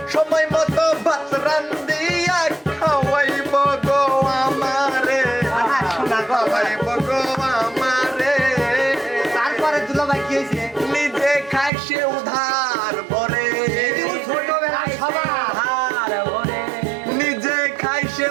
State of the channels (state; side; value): drops out; left; at 11.7 s